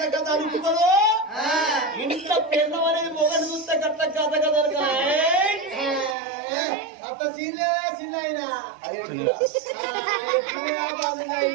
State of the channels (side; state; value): left; drops out; at 6.2 s